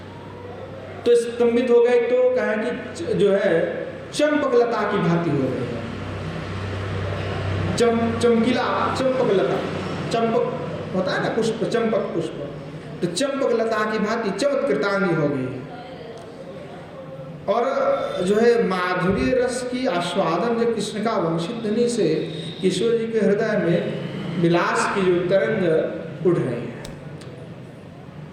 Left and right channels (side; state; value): both; identical; correlation 1.00